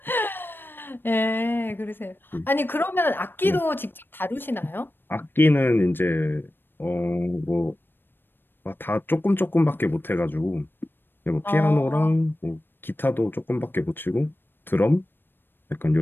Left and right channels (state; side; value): late; right; 0.097 ms